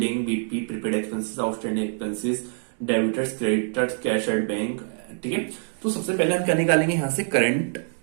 BP, prepaid expenses, outstanding expenses, debtors, creditors, cash at bank, ठीक है। तो सबसे पहले हम क्या निकालेंगे, यहां से करंट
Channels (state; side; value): silent; left; 62 dB below the other